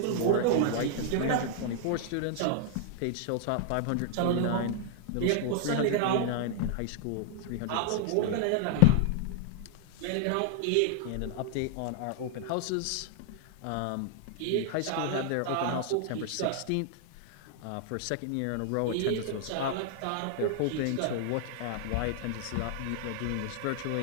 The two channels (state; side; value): different; both; correlation 0.00